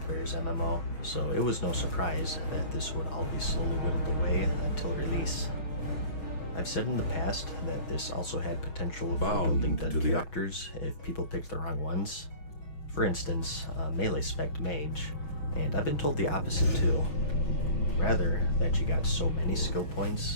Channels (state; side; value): late; right; 6.4 ms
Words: player's MMO, so it was no surprise that this would all be slowly whittled away until release. I've said in the past that this also had potential for Bound building to done the- characters if people picked the wrong ones. For instance, a melee spec mage, and I've been told the opposite too. Rather, that you got so many skill